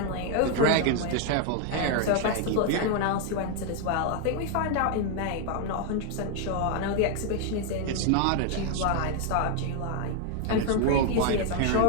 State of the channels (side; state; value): both; different; correlation 0.00